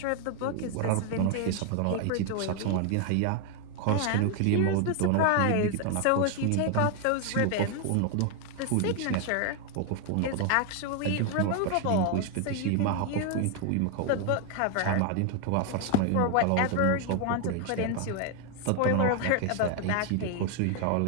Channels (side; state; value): both; different; correlation 0.00